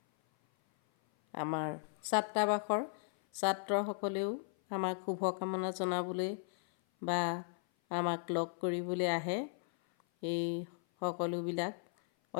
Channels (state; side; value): silent; right; 54 dB below the other